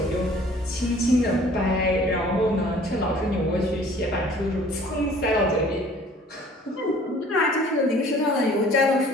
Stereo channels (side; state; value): both; normal; correlation 0.52